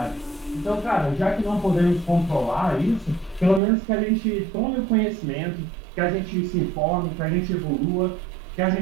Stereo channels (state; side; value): drops out; left; at 3.6 s